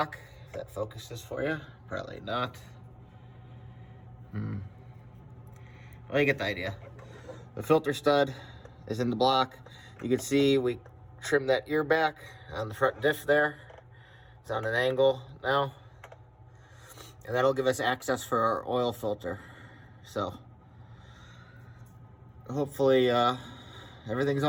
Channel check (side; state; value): both; identical; correlation 1.00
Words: If that focuses for you, probably not. Well, you get the idea. The filter stud is in the block. You can see we trimmed that ear back on the front diff there. It's on an angle now. And that'll give us access for our oil filter. So hopefully everything's